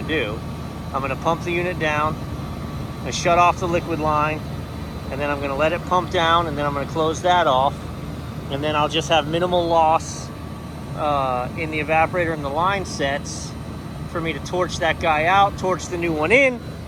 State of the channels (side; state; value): both; identical; correlation 1.00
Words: to do. I'm going to pump the unit down. I'm going to shut off the liquid line. And then I'm going to let it pump down. And then I'm going to close that off. And then I'll just have minimal loss in the evaporator and the line sets for me to torch that guy out, torch the new one in,